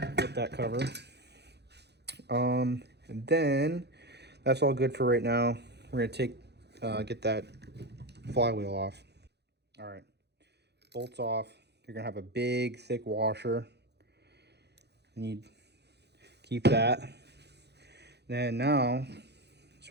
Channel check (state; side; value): late; left; 0.49 ms